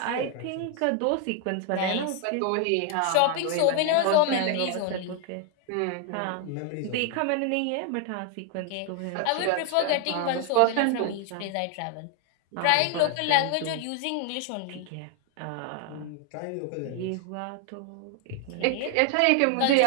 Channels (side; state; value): both; different; correlation 0.00